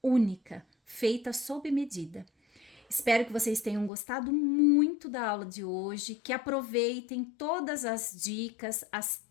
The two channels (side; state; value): right; drops out; at 3.9 s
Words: única, feita sob medida. Espero que vocês tenham gostado muito da aula de hoje, que aproveitem todas as dicas, as